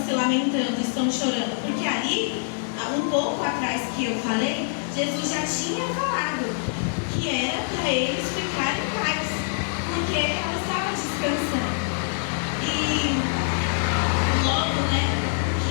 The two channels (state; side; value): silent; right; digital silence